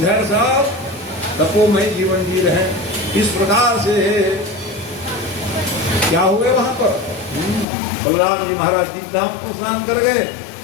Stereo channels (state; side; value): drops out; right; at 7.7 s